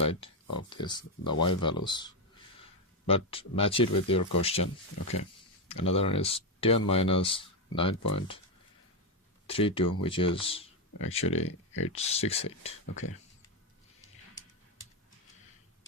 of this, the y values, but match it with your question. Okay, another one is 10 minus 9.32, which is actually 868.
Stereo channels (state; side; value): normal; both; correlation 0.07